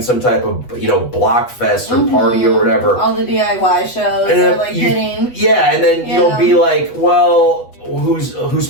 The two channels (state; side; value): late; right; 8.1 ms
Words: some type of block fest or party or whatever. All the DIY shows are like hitting. Yeah, and then you'll be like, well, who's